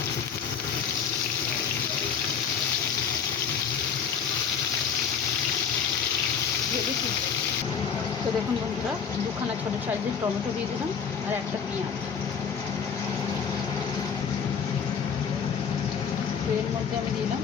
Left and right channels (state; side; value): quieter; right; 6.9 dB